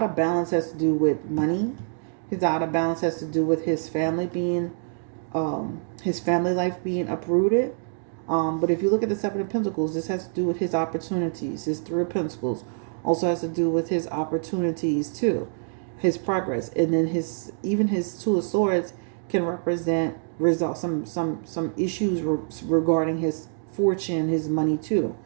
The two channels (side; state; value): left; silent; digital silence